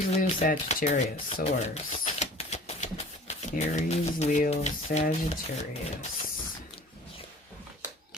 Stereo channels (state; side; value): normal; both; correlation 0.46